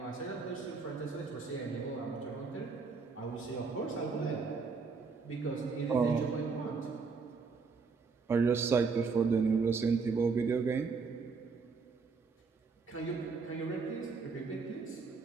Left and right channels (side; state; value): left; quieter; 4.8 dB